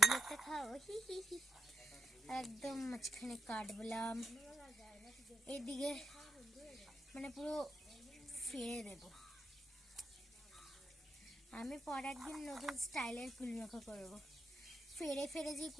একটা খাও, হি হি হি। একদম মাঝখানে কাটবলাম, এইদিকে মানে পুরো ফেলে দেব। আমি পর একদিন নতুন স্টাইলের কুলমাখা করবো। ফেরে ফেরে যে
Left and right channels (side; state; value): both; normal; correlation 0.78